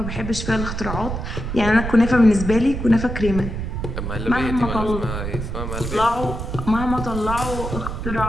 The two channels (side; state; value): right; noise; rumble, 5 dB below the sound